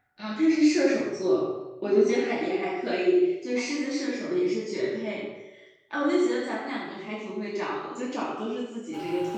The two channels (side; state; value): both; identical; correlation 1.00